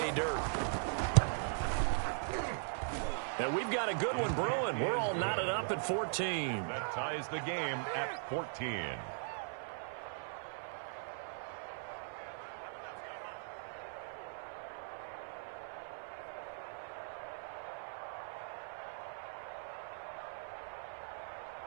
dirt. And we've got a good one brewing. We're all knotted up at 14. That ties the game at 14.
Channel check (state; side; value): silent; left; 51 dB below the other